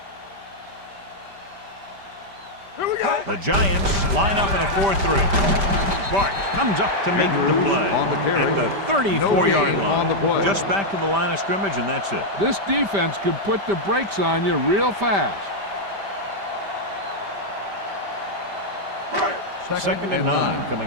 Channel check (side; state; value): left; late; 5.1 ms